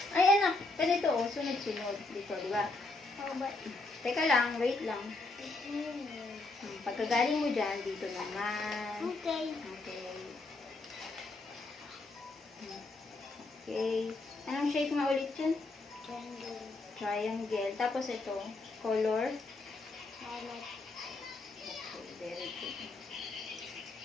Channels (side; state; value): right; quieter; 3.3 dB